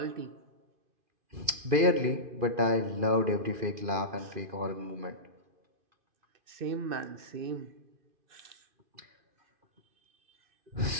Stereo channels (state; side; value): late; left; 2.4 ms